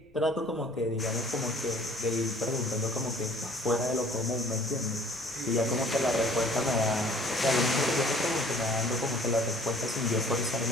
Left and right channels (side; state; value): left; noise; rumble, 30 dB below the sound